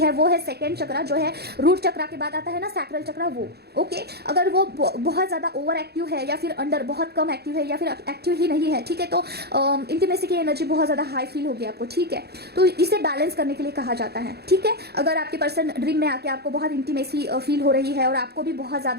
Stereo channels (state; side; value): late; left; 0.47 ms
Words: वो है सेकेंड चक्रा, जो है रूट चक्रा के बाद आता है ना सैक्रल चक्रा, वो, ओके। अगर वो बहुत ज़्यादा ओवर एक्टिव है या फिर अंडर बहुत कम एक्टिव है या फिर एक्टिव ही नहीं है, ठीक है, तो इंटीमेसी की एनर्जी बहुत ज़्यादा हाई फील होगी आपको, ठीक है। तो इसे बैलेंस करने के लिए कहा जाता है, ठीक है। अगर आपके पर्सन ड्रीम में आके आपको बहुत इंटीमेसी फील हो रही है और आपको भी बहुत